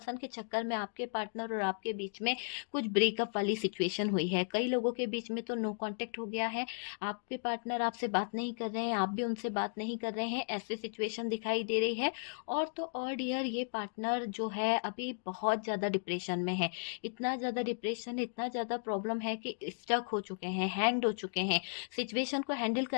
के चक्कर में आपके पार्टनर और आपके बीच में कुछ ब्रेकअप वाली सिचुएशन हुई है। कई लोगों के बीच में तो नो कॉन्टेक्ट हो गया है, आपके पार्टनर आपसे बात नहीं कर रहे हैं, आप भी उनसे बात नहीं कर रहे हैं, ऐसी सिचुएशन दिखाई दे रही है। और तो और डियर, ये पार्टनर जो है अभी बहुत ज़्यादा डिप्रेशन में है। इतना ज़्यादा डिप्रेशन, इतना ज़्यादा प्रॉब्लम है कि स्टक हो चुके हैं, हैंग हो चुके हैं। सिचुएशन को हैंडल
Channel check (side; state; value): right; silent; digital silence